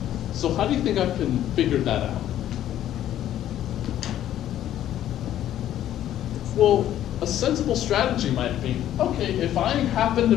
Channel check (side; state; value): right; quieter; 11.9 dB